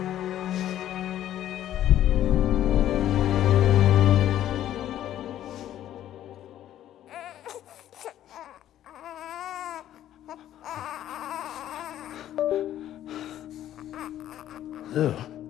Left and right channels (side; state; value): right; quieter; 12.0 dB